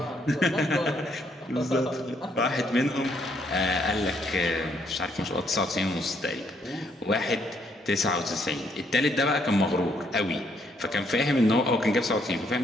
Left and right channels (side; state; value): both; normal; correlation 0.71